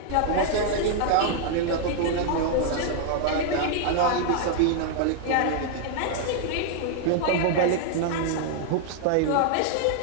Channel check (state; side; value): different; both; correlation 0.00